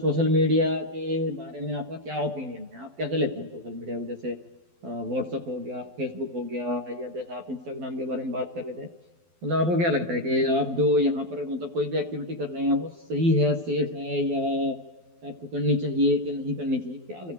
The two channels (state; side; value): late; left; 12 ms